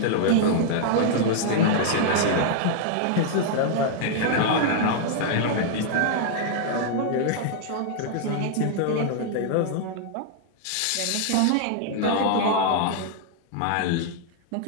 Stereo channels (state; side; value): different; both; correlation -0.01